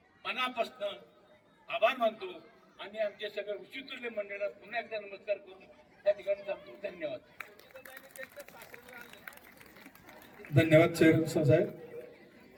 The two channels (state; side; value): identical; both; correlation 1.00